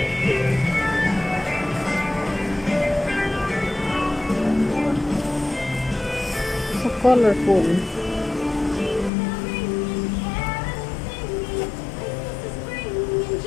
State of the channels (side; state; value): right; drops out; at 9.1 s